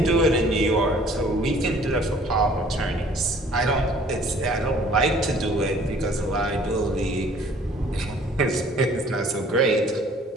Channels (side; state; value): both; normal; correlation 0.54